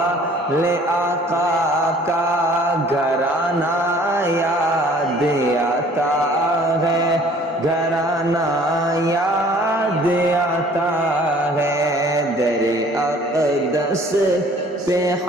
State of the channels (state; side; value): normal; both; correlation 0.53